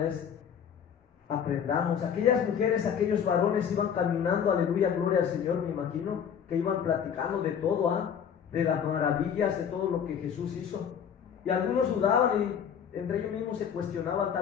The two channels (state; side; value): quieter; right; 7.9 dB